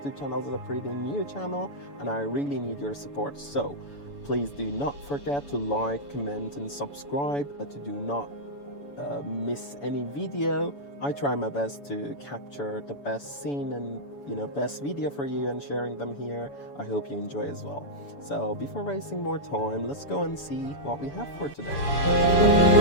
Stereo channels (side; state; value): right; late; 7.0 ms